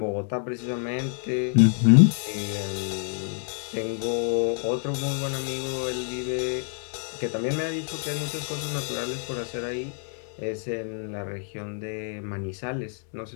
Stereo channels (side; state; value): right; silent; 60 dB below the other